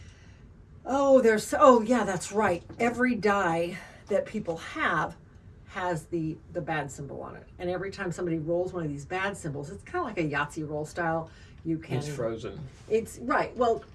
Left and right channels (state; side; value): identical; both; correlation 1.00